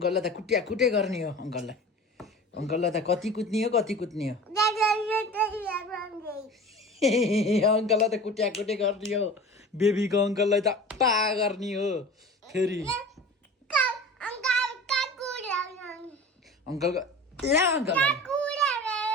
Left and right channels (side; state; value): both; normal; correlation 0.37